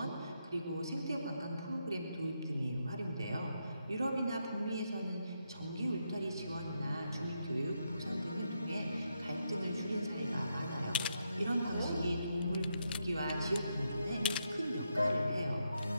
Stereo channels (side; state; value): both; inverted; correlation -0.81